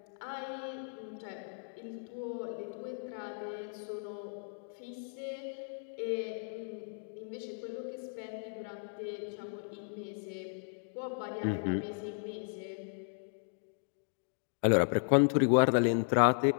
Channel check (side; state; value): right; silent; digital silence